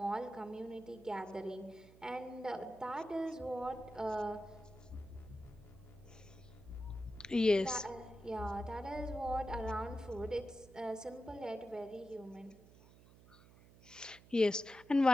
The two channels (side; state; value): right; noise; hum, 22 dB below the sound